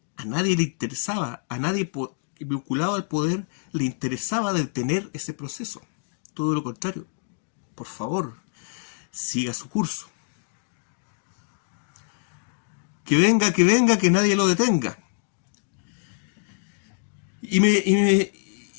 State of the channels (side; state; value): right; silent; digital silence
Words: A nadie le interesaba, a nadie vinculado al poder le interesaba detener ese proceso. Todo lo contrario. Por favor, siga su curso. Que venga, que nadie lo detenga.